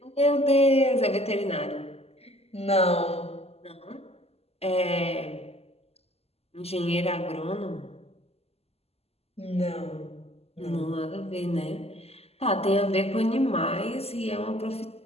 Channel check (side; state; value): right; late; 0.29 ms